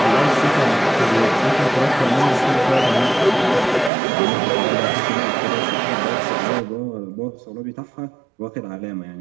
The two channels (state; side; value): drops out; left; at 3.9 s